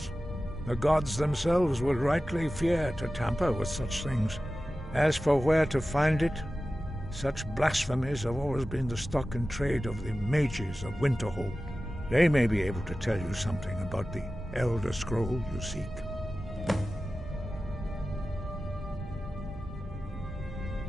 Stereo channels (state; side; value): normal; both; correlation 0.95